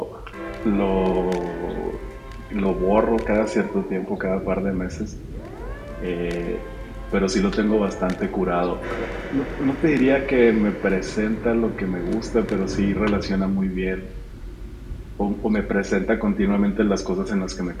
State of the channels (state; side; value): identical; both; correlation 1.00